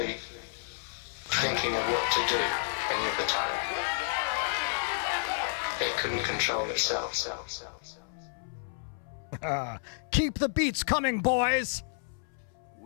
thinking of what to do any of the time. It can control itself. Keep the beats coming, boys!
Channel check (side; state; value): right; silent; 57 dB below the other